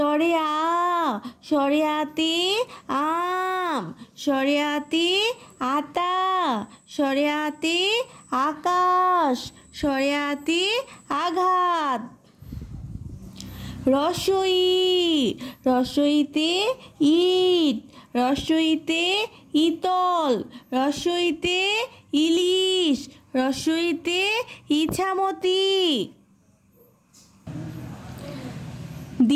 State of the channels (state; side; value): identical; both; correlation 1.00